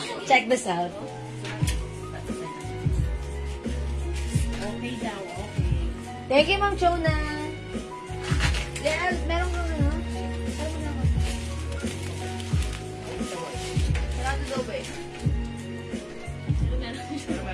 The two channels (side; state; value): both; identical; correlation 1.00